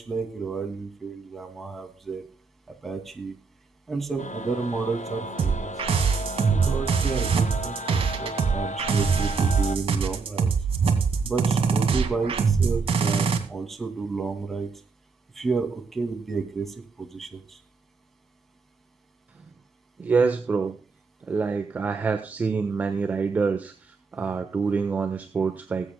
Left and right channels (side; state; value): left; quieter; 4.7 dB